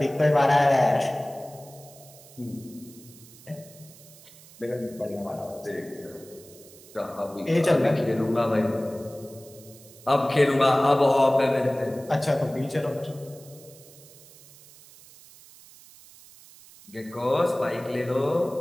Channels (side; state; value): right; noise; hiss, 22 dB below the sound